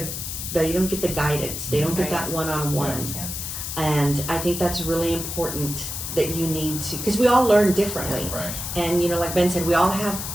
guidance. They don't get that one-on-one. And I think that's really important, that you need to, because we all learn differently. And you know, like Ben said, we all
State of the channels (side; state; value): left; noise; hiss, 6 dB below the sound